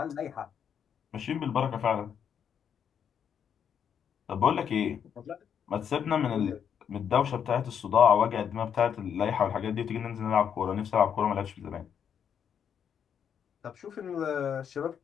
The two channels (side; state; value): right; quieter; 8.0 dB